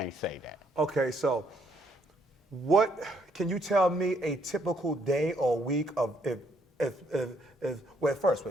say that. Okay, so can you tell me a typical day or week of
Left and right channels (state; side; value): normal; both; correlation 0.70